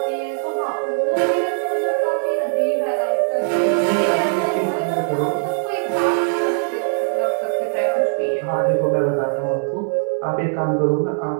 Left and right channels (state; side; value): silent; left; 61 dB below the other